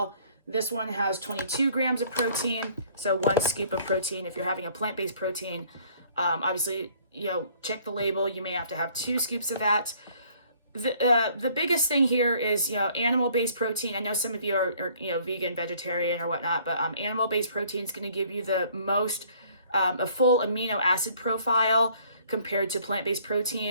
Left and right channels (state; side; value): inverted; both; correlation -0.58